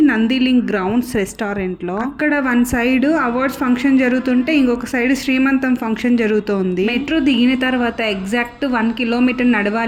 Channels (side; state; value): both; identical; correlation 1.00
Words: నందిలింగ్ గ్రౌండ్స్ రెస్టారెంట్ లో. అక్కడ వన్ సైడ్ అవార్డ్స్ ఫంక్షన్ జరుగుతుంటే ఇంకొక సైడ్ శ్రీమంతం ఫంక్షన్ జరుగుతోంది. మెట్రో దిగిన తర్వాత ఎగ్జాక్ట్ 1 కిలోమీటర్